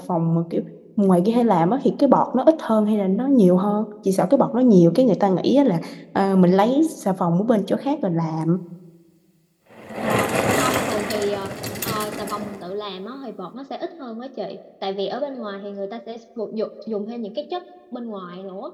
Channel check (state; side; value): identical; both; correlation 1.00